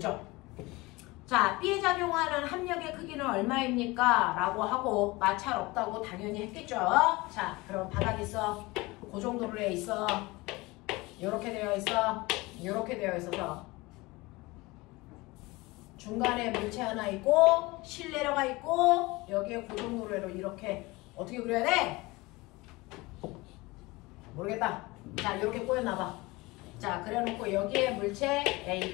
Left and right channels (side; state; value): right; quieter; 22.4 dB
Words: 자, B에 작용하는 합력의 크기는 얼마입니까? 라고 하고 마찰 없다고 당연히 했겠죠. 자, 그럼 바닥 있어. 그 정도로 해 있어. 이렇게 되어 있어. 이렇게 되어 있어서 중간에 물체 하나 있고 실내려가 있고 여기에 고정도로로 이렇게 어떻게 그려야 돼? 모르겠다. 자, 이렇게 꼬여놔봐. 자, 그래놓고 여기에 물체